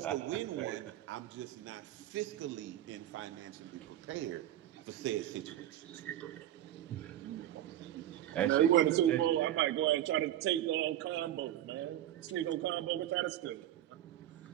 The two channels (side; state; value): left; quieter; 12.6 dB